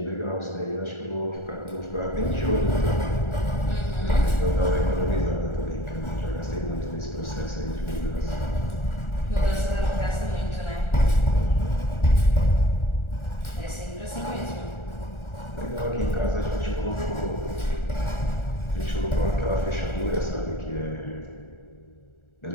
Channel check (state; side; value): late; right; 1.4 ms